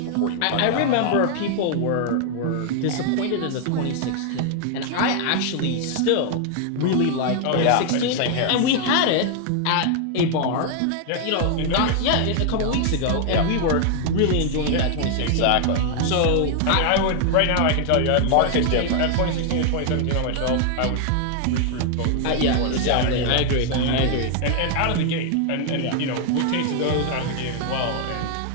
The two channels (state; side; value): different; both; correlation 0.00